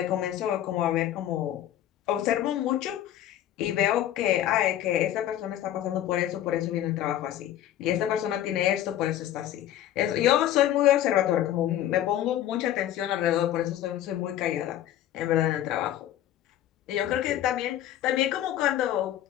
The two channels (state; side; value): quieter; right; 12.1 dB